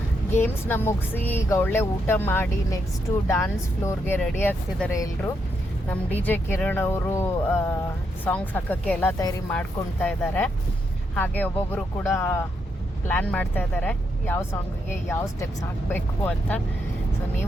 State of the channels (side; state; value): both; normal; correlation 0.80